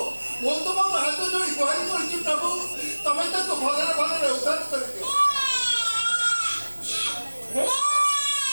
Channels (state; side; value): inverted; both; correlation -1.00